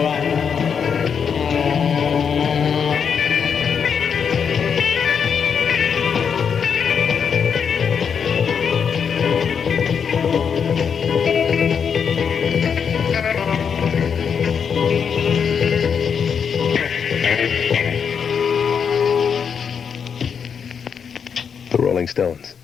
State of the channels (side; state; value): right; quieter; 6.9 dB